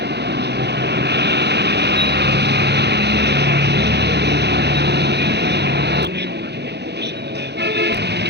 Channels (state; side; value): late; left; 0.49 ms